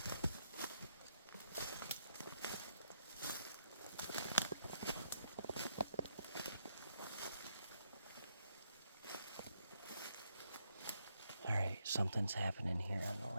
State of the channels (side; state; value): both; inverted; correlation -0.77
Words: Something's happening here on the